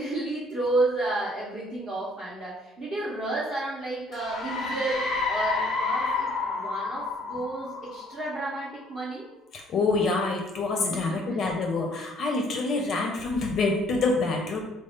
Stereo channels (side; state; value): both; normal; correlation 0.62